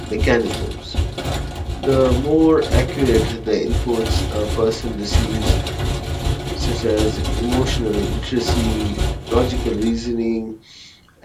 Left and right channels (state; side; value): identical; both; correlation 1.00